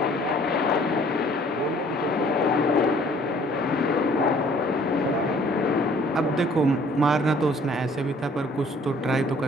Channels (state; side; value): normal; both; correlation 0.57